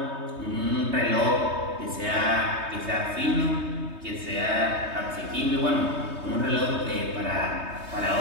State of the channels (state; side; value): late; left; 3.2 ms